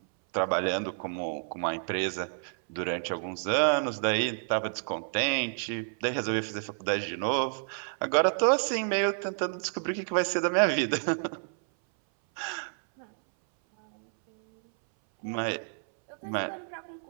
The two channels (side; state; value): left; silent; 58 dB below the other